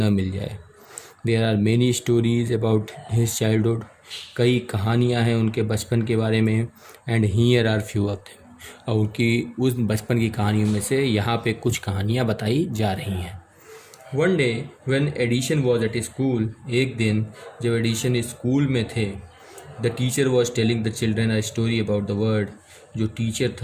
मिल जाए। There are many stories about his childhood. कई कहानियाँ हैं उनके बचपन के बारे में। And here are few of them, और उनकी उस बचपन की कहानियों में से यहाँ पे कुछ कहानियाँ बताई जा रही हैं। One day when Edison was at school, एक दिन जब एडिशन स्कूल में थे, the teacher was telling the children a story about the world, जो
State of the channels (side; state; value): both; identical; correlation 1.00